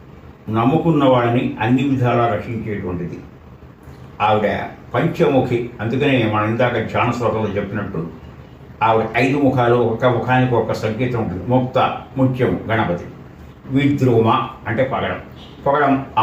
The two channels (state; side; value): identical; both; correlation 1.00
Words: నమ్ముకున్న వాళ్ళని అన్ని విధాలా రక్షించేటువంటిది ఆవిడ. పంచముఖి, అందుకనే మనం ఇందాక ధ్యాన శ్లోకంలో చెప్పినట్టు ఆవిడ 5 ముఖాలు, ఒక ముఖానికి ఒక సంకేతం ఉంటుంది. ముక్త ముత్యము గణపతి, విద్రుమ అంటే పగడం, పగడం